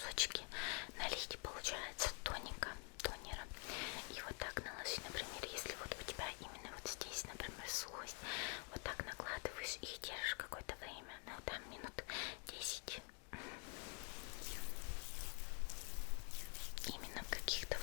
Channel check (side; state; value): right; quieter; 36.5 dB